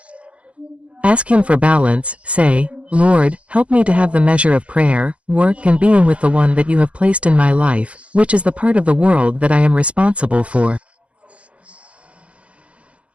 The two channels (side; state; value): left; late; 0.062 ms